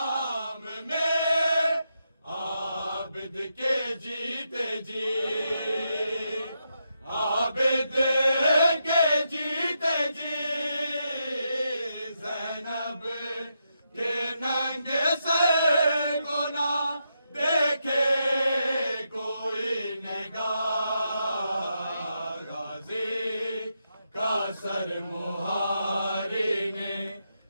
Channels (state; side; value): inverted; both; correlation -0.83